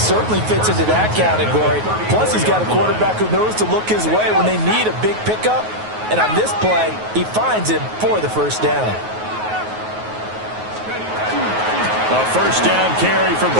fits into that category. Plus, he's got a quarterback who knows to look his way when they need a big pickup. And on this play, he finds him for the 1st down. A 1st down carry for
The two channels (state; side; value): late; left; 9.4 ms